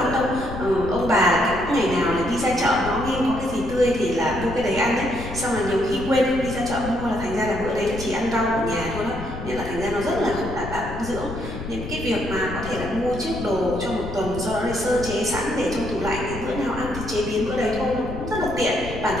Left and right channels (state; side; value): noise; left; rumble, 9 dB below the sound